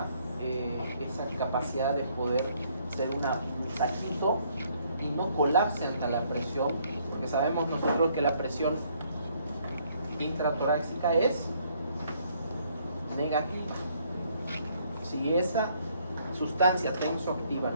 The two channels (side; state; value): both; inverted; correlation -0.66